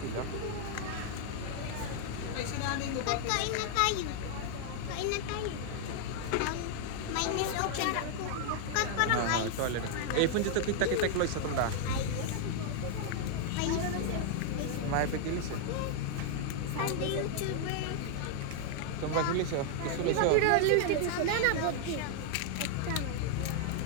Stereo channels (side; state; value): both; different; correlation 0.00